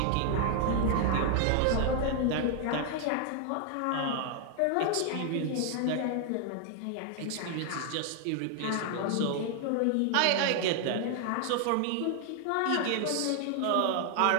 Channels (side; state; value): both; different; correlation 0.00